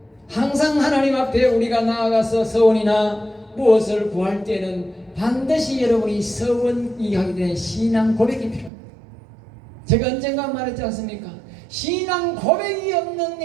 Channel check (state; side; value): drops out; left; at 8.7 s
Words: 항상 하나님 앞에 우리가 나아가서 서원이나 무엇을 구할 때는 반드시 여러분이 서원이 하게 되는 신앙 고백이 필요합니다. 제가 언젠가 말했지 않습니까? 신앙 고백이 없는